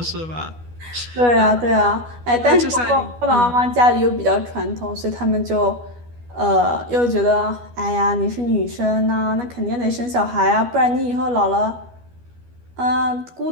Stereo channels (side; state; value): left; late; 12 ms